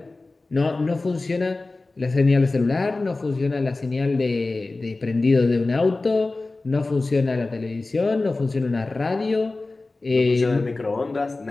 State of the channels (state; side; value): quieter; right; 3.3 dB